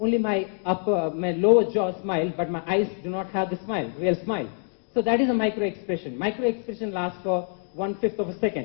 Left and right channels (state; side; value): silent; right; 61 dB below the other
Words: my lower jaw smile, but my eyes do not have the smile, real smile. So that is a micro-expression. Micro-expression lasts for 1/5 of a